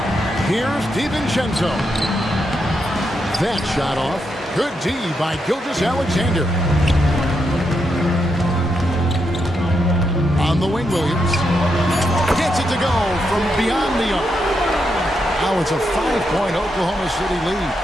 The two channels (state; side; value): normal; both; correlation 0.82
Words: Here's DiVincenzo. That shot off. Good D by Gilgeous-Alexander. On the wing, Williams. Gets it to go from beyond the arc. Now it's a 5-point Oklahoma City lead.